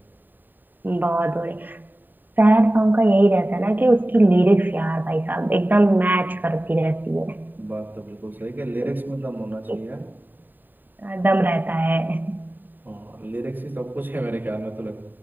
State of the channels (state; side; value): late; left; 0.090 ms